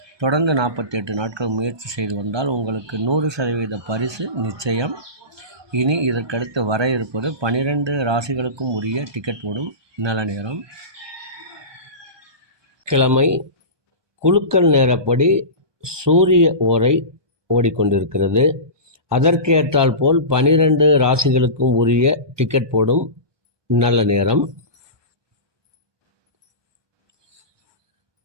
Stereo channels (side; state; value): left; late; 1.2 ms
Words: தொடர்ந்து 48 நாட்கள் முயற்சி செய்து வந்தால் உங்களுக்கு 100% பரிசு நிச்சயம். இனி இதற்கடுத்து வர இருப்பது 12 ராசிகளுக்கும் உரிய டிக்கெட் போடும் நல்ல நேரம். கிழமை குலுக்கல் நேரப்படி சூரிய ஓரை ஓடிக்கொண்டிருக்கிறது. அதற்கேற்றால் போல் 12 ராசிகளுக்கும் உரிய டிக்கெட் போடும் நல்ல நேரம்.